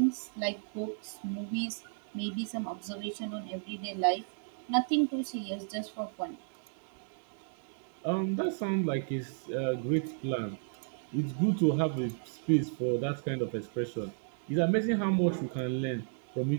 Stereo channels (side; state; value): left; silent; digital silence